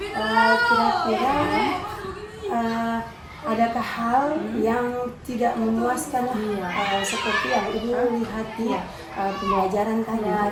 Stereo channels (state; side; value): identical; both; correlation 1.00